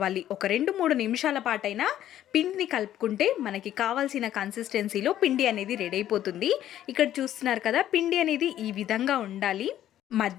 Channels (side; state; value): right; quieter; 12.0 dB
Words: ఒక 2-3 నిమిషాల పాటైనా పిండిని కలుపుకుంటే మనకి కావాల్సిన కన్సిస్టెన్సీలో పిండి అనేది రెడీ అయిపోతుంది. ఇక్కడ చూస్తున్నారు కదా, పిండి అనేది ఈ విధంగా ఉండాలి.